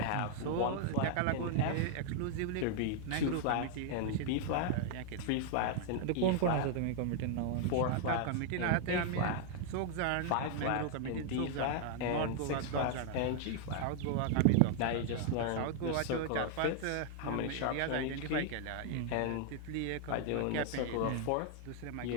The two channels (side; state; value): both; different; correlation 0.00